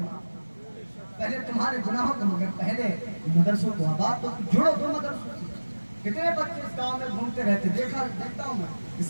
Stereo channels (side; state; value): both; inverted; correlation -1.00